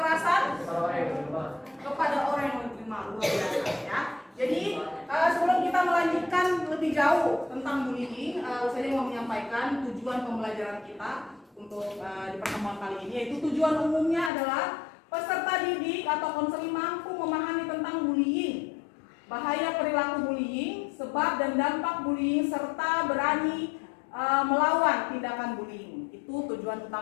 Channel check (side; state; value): right; drops out; at 14.3 s